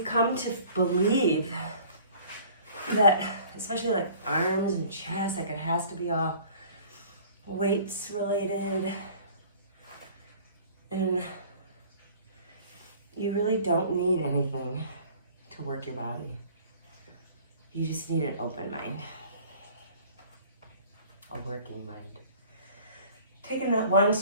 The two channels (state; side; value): inverted; both; correlation -0.49